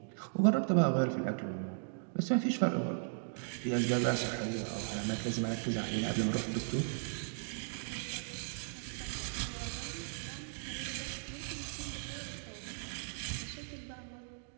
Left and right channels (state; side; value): silent; left; digital silence